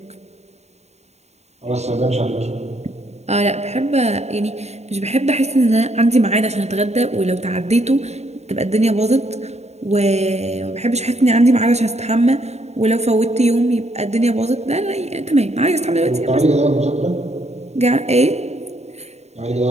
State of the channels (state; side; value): late; left; 0.32 ms